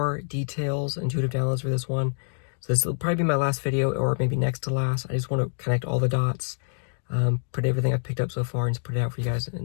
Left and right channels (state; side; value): silent; right; digital silence